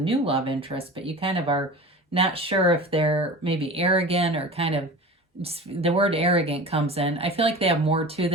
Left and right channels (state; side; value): normal; both; correlation 0.35